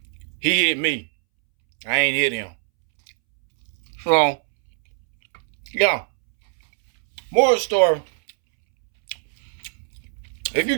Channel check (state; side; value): silent; left; 64 dB below the other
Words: He hit me. I ain't hit him. So, yeah. More story. If you